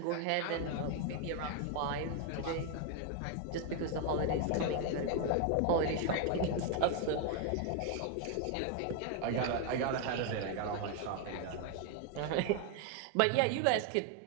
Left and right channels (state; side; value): different; both; correlation 0.01